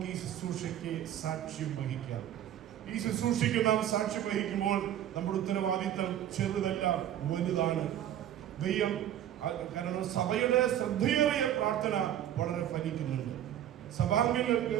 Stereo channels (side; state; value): left; quieter; 11.3 dB